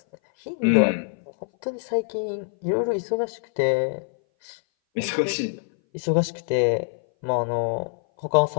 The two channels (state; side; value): silent; right; 59 dB below the other